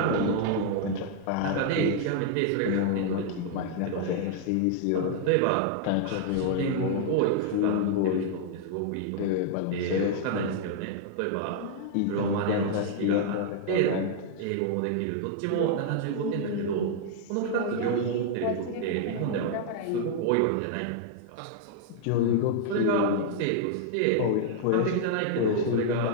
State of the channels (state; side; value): different; both; correlation -0.01